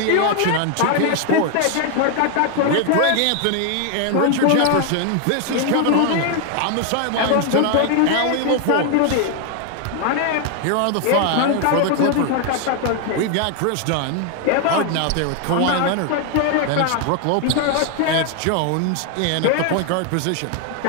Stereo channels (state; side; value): different; both; correlation 0.00